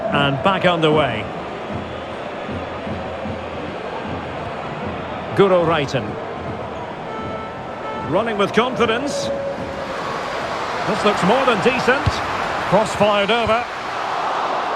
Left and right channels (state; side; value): identical; both; correlation 1.00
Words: and back underway. Guro Reiten. Running with confidence. This looks more than decent. Cross fired over.